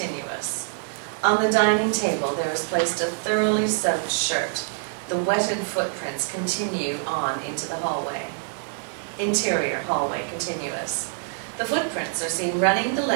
On the dining table there is placed a thoroughly soaked shirt. The wetted footprints continue on into the hallway. Interior, hallway, continuous. The footprints are seen running the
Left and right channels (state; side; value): silent; left; digital silence